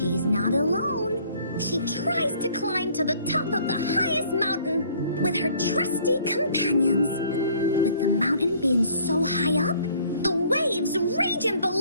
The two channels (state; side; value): inverted; both; correlation -0.58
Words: not alone. She tries to climb to the top of the highest mountain with her trusty companions. With the mountain being so high up, the waves raging